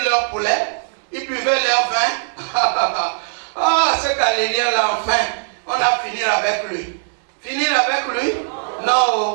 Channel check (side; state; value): left; silent; 66 dB below the other